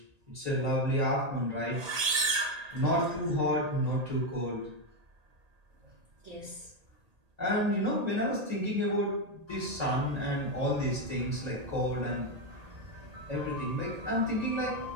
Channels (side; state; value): left; late; 1.8 ms